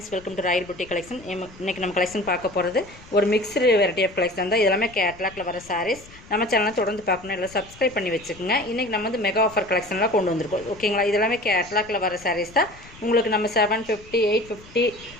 welcome to Royal Buti collection. இன்றைக்கி நம்ம collection பார்க்க போகிறது ஒரு மிக்ஸ்டு வெரைட்டி ஆஃப் கலெக்ஷன் தான். இதெல்லாமே கேட்லாக்ல வர சாரீஸ். நம்ம சேனலை தொடர்ந்து பார்க்கணும், இல்லை சப்ஸ்கிரைப் பண்ணி வச்சுக்கோங்க. இன்றைக்கி நம்ம வந்து மெகா ஆஃபர் கலெக்ஷன்லாம் கொண்டு வந்திருக்கோம். ஓகேங்களா? இதெல்லாமே கேட்லாக்ல வர சாரீஸ் தான். உங்களுக்கு நம்ம 750, 850,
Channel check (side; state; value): left; noise; rumble, 21 dB below the sound